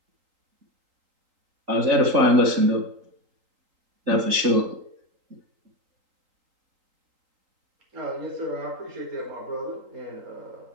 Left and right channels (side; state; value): left; late; 3.8 ms